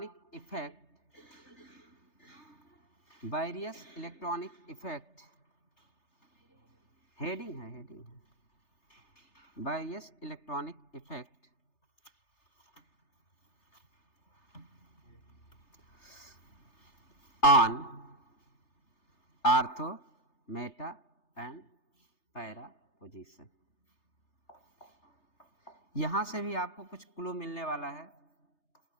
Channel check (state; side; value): late; right; 3.3 ms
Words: effect, various electronic effect, heading है, हेडिंग है, various electronic effect on ortho, Meta and para position. यहां से भी आपको कुछ क्लू मिलने वाला है,